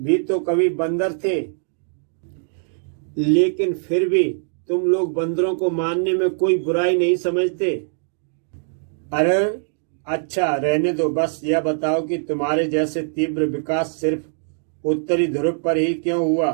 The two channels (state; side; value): silent; left; 64 dB below the other